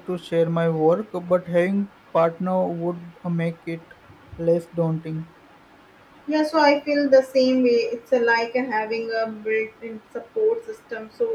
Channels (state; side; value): identical; both; correlation 1.00